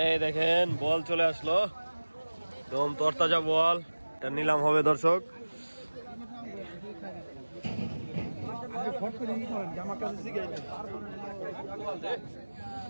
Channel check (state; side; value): inverted; both; correlation -1.00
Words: দেখেন বল চলে আসলো, একদম তরতাজা বল। এটা নিলাম হবে দর্শক।